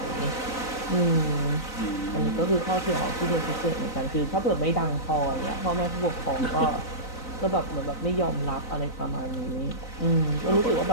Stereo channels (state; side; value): late; right; 3.9 ms